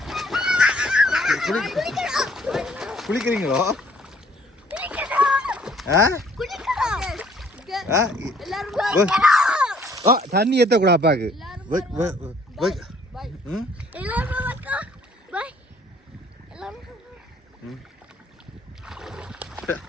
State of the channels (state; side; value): normal; both; correlation 0.60